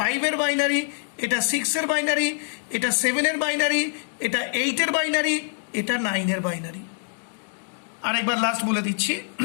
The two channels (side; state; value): right; silent; 62 dB below the other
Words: বাইনারি, এটা 6-এর বাইনারি, এটা 7-এর বাইনারি, এটা 8-এর বাইনারি, এটা 9-এর বাইনারি। আরেকবার লাস্ট বলে দিচ্ছি,